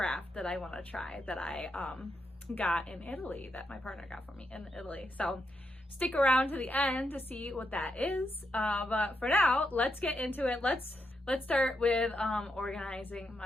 that I want to try that I got in Italy, that my partner got for me in Italy. So stick around to the end to see what that is. But for now, let's get into it. Let's start with organizing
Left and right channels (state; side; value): normal; both; correlation 0.82